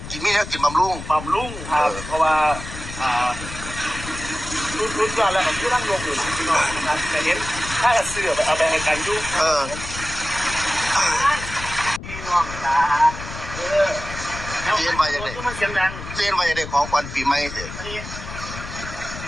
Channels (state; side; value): noise; left; rumble, 10 dB below the sound